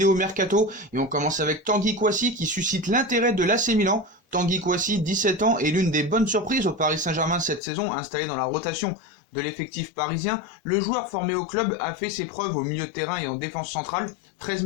Mercato et on commence avec Tanguy Kouassi qui suscite l'intérêt de l'AC Milan. Tanguy Kouassi, 17 ans, est l'une des bonnes surprises au Paris Saint-Germain cette saison, installé dans la rotation de l'effectif parisien. Le joueur formé au club a fait ses preuves au milieu de terrain et en défense centrale, 13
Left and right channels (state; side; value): drops out; right; at 7.6 s